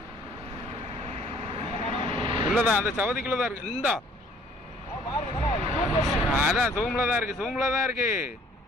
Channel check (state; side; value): normal; both; correlation 0.57